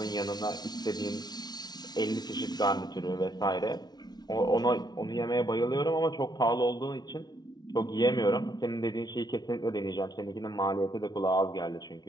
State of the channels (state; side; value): late; right; 0.19 ms